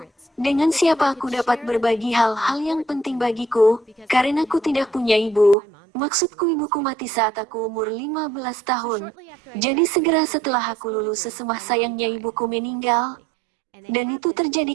Dengan siapa aku dapat berbagi hal-hal yang penting bagiku, karena aku tidak punya ibu. Maksudku ibuku mati saat aku umur 15 tahun. Jadi segera setelah aku lulus sesemah sayangnya ibuku meninggal. Dan itu terjadi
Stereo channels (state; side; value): drops out; left; at 5.6 s